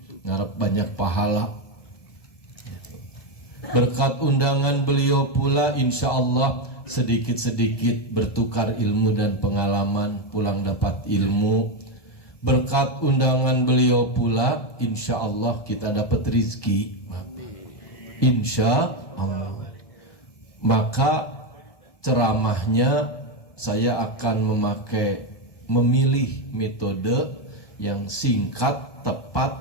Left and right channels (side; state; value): right; late; 1.7 ms